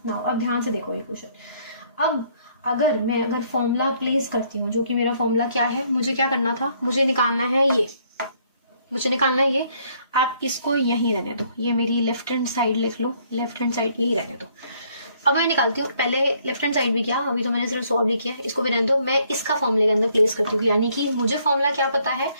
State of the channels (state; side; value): inverted; both; correlation -0.66